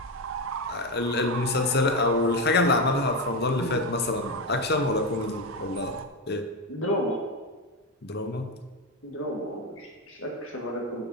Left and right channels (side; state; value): both; normal; correlation 0.12